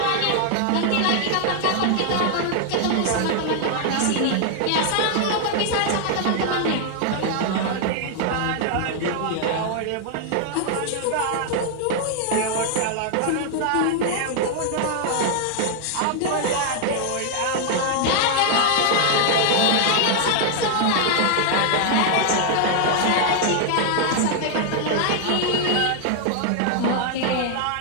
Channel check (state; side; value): different; both; correlation 0.00